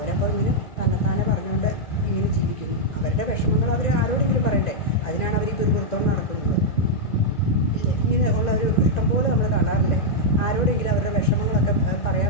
ഇങ്ങനെ തന്നെത്താനെ പറഞ്ഞുകൊണ്ട് ഇങ്ങനെ ജീവിക്കുന്നു. അവരുടെ വിഷമങ്ങൾ അവർ ആരോടെങ്കിലും പറയണ്ടേ? അതിനാണ് അവർ ഈ പിറുപുറത്തോണ്ട് നടക്കുന്നത് ഇല്ലേ? ഇങ്ങനെ ഉള്ള ഒരു ഇഷ്ടംപോലെ നമ്മൾ കാണാറില്ലേ? ആരോടെങ്കിലും അവരുടെ വിഷമങ്ങളൊക്കെ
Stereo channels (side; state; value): right; late; 1.9 ms